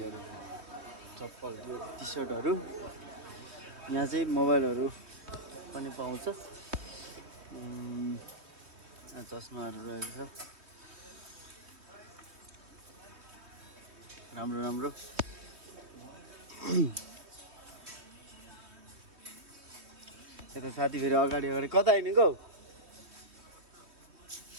चप्पल, यो टी सर्टहरू, यहाँ चाहिँ मोबाइलहरू पनि पाउँछ। चस्माहरू रहेको छ राम्रो राम्रो। यता साथी फेरि अगाडि कता हिँडेको?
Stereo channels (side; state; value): left; late; 3.2 ms